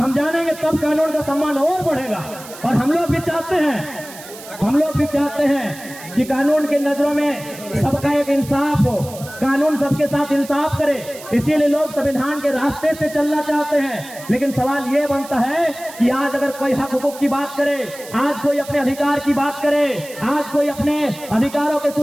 जानेंगे तब कानून का सम्मान और बढ़ेगा। और हम लोग भी चाहते हैं कि कानून की नजरों में सबका एक इंसाफ हो, कानून सबके साथ इंसाफ करे, इसीलिए लोग संविधान के रास्ते से चलना चाहते हैं। लेकिन सवाल ये बनता है कि आज अगर कोई हक हुकूक की बात करे, आज कोई अपने अधिकार की बात करे, आज कोई अपने अधिकारों की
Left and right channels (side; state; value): right; noise; hiss, 16 dB below the sound